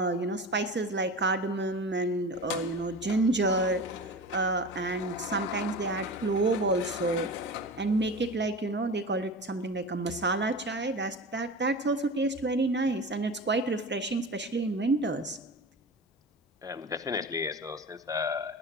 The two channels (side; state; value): both; normal; correlation 0.31